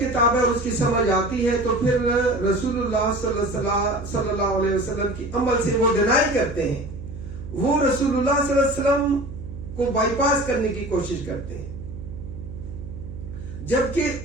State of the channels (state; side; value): noise; right; hum, 11 dB below the sound